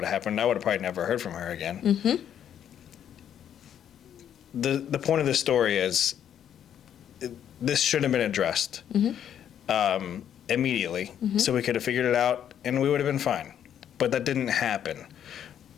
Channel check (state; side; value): quieter; right; 9.6 dB